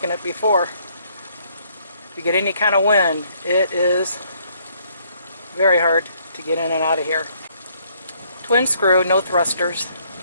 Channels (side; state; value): both; inverted; correlation -0.66